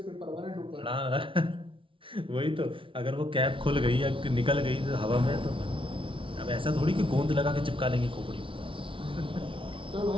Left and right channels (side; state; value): left; late; 0.25 ms